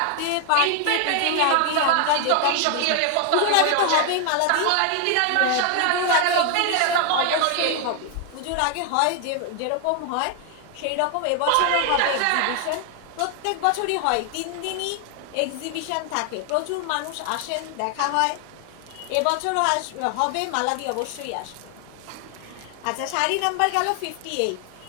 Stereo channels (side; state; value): both; different; correlation 0.00